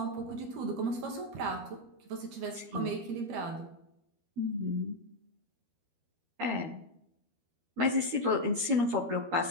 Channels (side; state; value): left; late; 13 ms